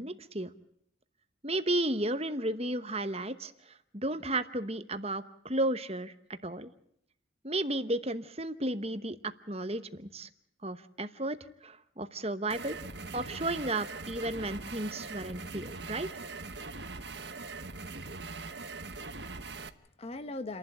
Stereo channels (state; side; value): normal; both; correlation 0.35